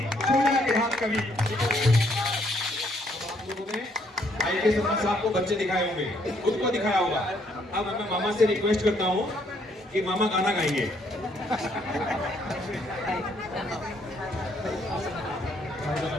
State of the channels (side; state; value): both; normal; correlation 0.69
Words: के हाथ कभी आप लोगों ने I.K. शर्मा साहब को बच्चे दिखाए होंगे, खुद को दिखाया होगा। अब मैं मामा से रिक्वेस्ट करता हूँ कि मामा गाना गाएंगे।